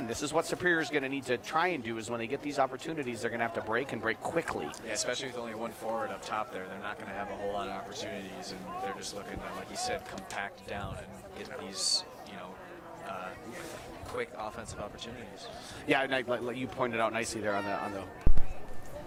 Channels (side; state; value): both; identical; correlation 1.00